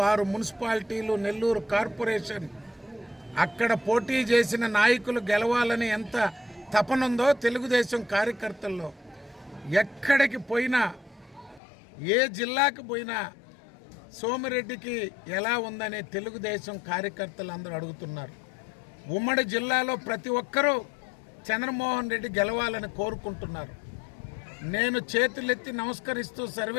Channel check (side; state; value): right; drops out; at 11.6 s